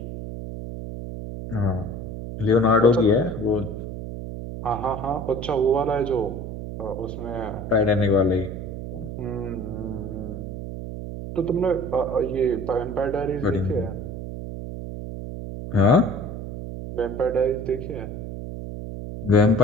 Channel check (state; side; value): noise; right; hum, 8 dB below the sound